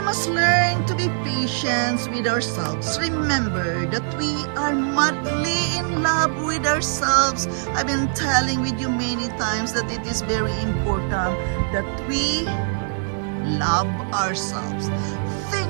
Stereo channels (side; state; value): left; silent; 64 dB below the other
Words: must learn to be patient with ourselves. Remember that we are madly in love with ourselves. I've been telling with you many times that it is very important that we love ourselves.